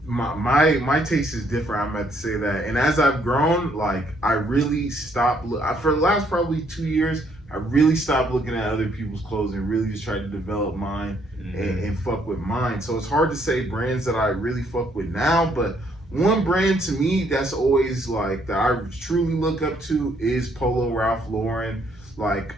my taste is different. I'm about to say that, and as I've grown, like, I really stopped. For the last probably 2 years, I really stopped looking at other people's clothes and really just tried to develop mine and fuck with mine. So it's hard to say brands that I really fuck with now, but one brand to me that's always like that I truly look up to is Polo Ralph Lauren. Like,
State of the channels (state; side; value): normal; both; correlation 0.69